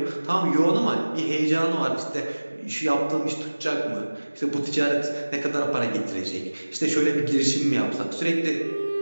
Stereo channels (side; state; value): both; inverted; correlation -1.00